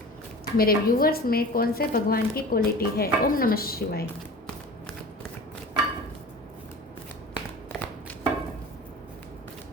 मेरे व्यूवर्स में कौन से भगवान की क्वालिटी है। ओम नमः शिवाय।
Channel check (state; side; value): normal; both; correlation 0.38